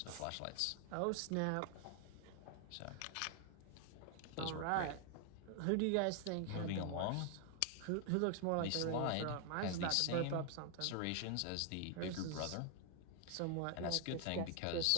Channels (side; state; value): both; different; correlation 0.00